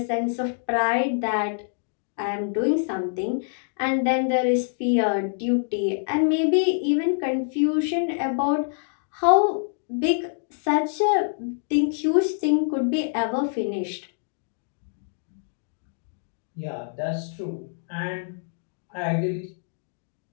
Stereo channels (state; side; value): silent; right; digital silence